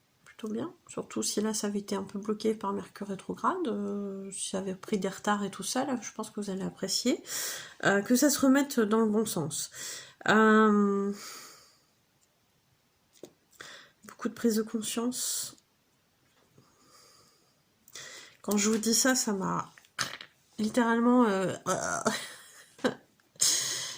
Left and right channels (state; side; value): identical; both; correlation 1.00